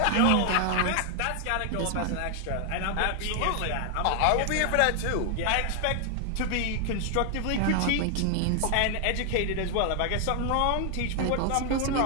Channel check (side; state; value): both; different; correlation 0.00